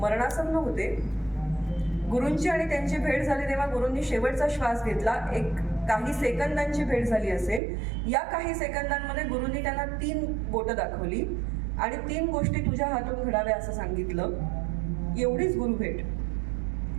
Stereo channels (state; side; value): drops out; left; at 7.6 s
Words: होते. गुरूंची आणि त्यांची भेट झाली तेव्हा गुरूंनी शेवटचा श्वास घेतला. एक काही सेकंदांची भेट झाली असेल. या काही सेकंदांमध्ये गुरूंनी त्यांना 3 बोटं दाखवली आणि 3 गोष्टी तुझ्या हातून घडाव्या असं सांगितलं. एवढीच गुरु भेट.